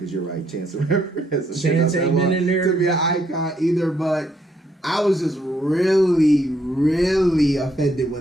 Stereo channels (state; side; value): normal; both; correlation 0.72